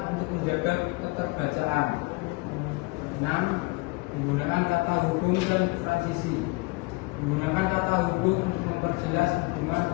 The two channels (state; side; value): quieter; right; 25.2 dB